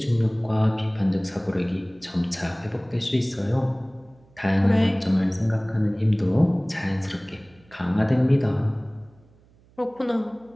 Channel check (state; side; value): noise; right; hum, 30 dB below the sound